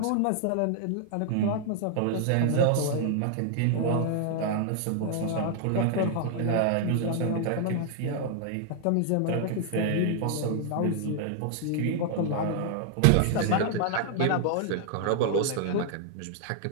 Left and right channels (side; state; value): both; different; correlation 0.00